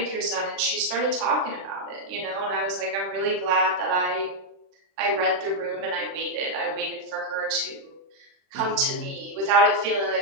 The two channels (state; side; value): late; left; 36 ms